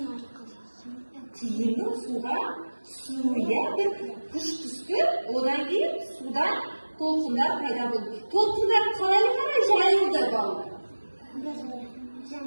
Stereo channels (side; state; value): both; inverted; correlation -1.00